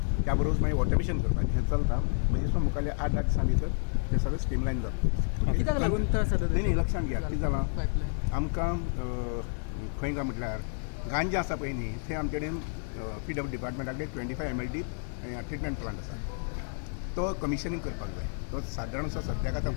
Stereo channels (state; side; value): silent; right; 58 dB below the other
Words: त्या बरोबर मागीर ऑटोमेशन करपाचें हें चलता. म्हणजे दिसून मुखाल्ले 8-10 दिसां भितर तें सगळें स्ट्रीमलायन जाता. कित्याक लागून त्रास जाता न्ही लक्षांत घ्या कितें जालां पायपलायन आमकां खंय काय म्हटल्यार गांजा आसा पळय न्ही थंय आमचे कडेन PW डिपार्टमेंटाकडे 25 MLD ट्रिटमेंट प्लांट आसा. तो कमिशनिंग करपाक जाय. तो सादारण असो सद्याक आतां